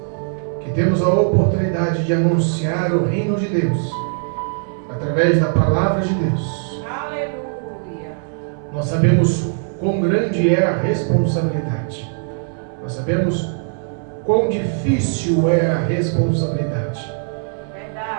que temos a oportunidade de anunciar o reino de Deus através da palavra de Deus, Aleluia. nós sabemos quão grande é a responsabilidade. Nós sabemos quão difícil é a responsabilidade.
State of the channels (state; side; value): silent; left; 62 dB below the other